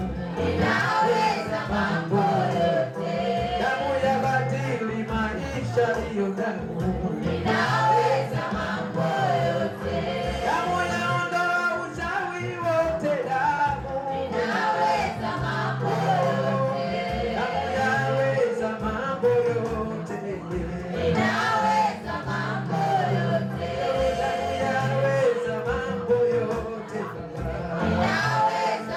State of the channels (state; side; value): identical; both; correlation 1.00